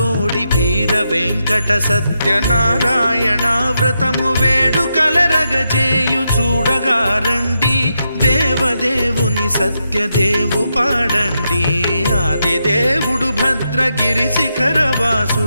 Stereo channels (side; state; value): both; inverted; correlation -0.84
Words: వీర వెంకట సత్యనారాయణ వ్రతము వేడుకలరగజేయు చూడగా రండి, దేవదేవుని సత్యదేవు పాడండి. ఆదిదేవుడు భద్రగిరి